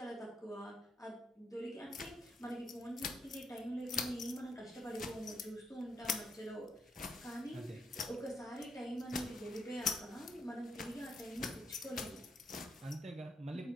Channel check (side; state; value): both; normal; correlation 0.77